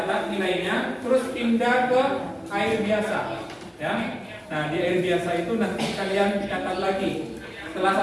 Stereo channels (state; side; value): identical; both; correlation 1.00